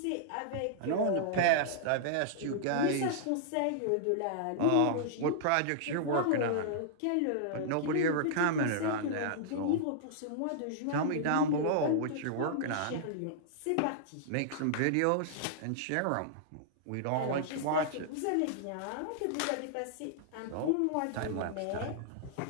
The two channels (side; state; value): both; different; correlation -0.02